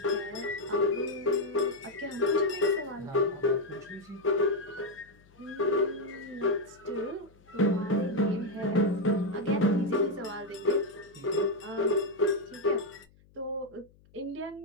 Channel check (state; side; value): noise; left; hum, 29 dB below the sound